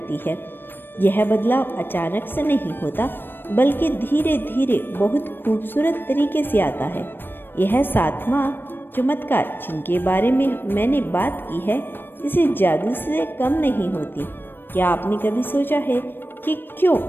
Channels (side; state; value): right; late; 0.096 ms